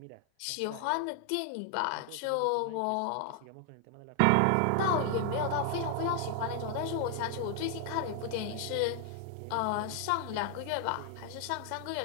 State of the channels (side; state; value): both; different; correlation 0.00